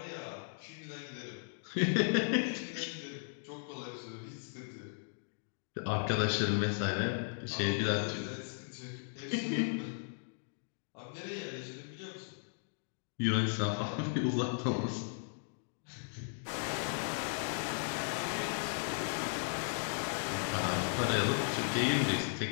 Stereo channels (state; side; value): silent; right; digital silence